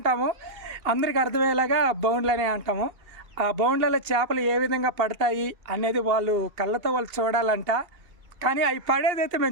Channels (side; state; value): left; late; 2.7 ms